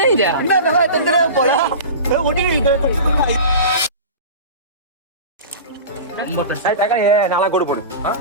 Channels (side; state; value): both; inverted; correlation -0.31